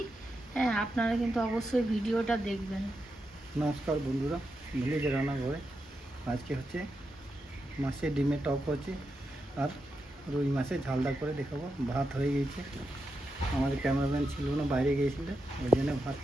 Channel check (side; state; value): both; normal; correlation 0.87